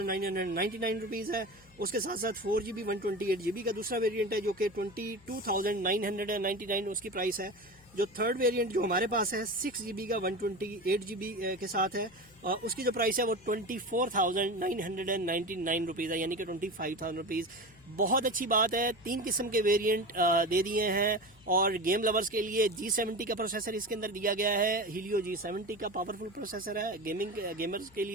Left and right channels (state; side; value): noise; left; hum, 26 dB below the sound